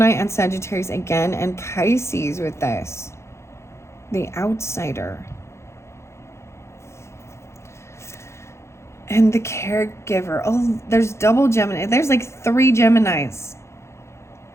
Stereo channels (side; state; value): right; late; 0.13 ms